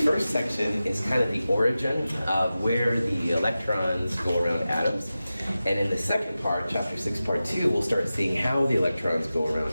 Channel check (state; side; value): inverted; both; correlation -0.94